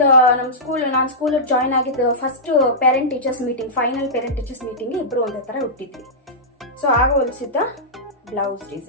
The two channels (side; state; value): both; normal; correlation -0.13